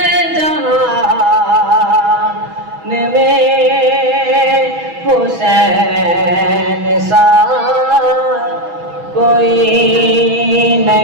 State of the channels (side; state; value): left; late; 6.1 ms